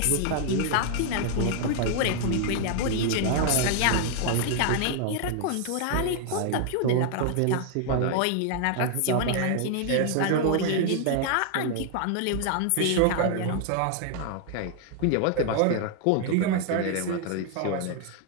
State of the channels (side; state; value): both; different; correlation 0.00